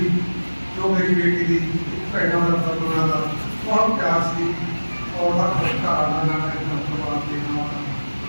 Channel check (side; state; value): both; inverted; correlation -1.00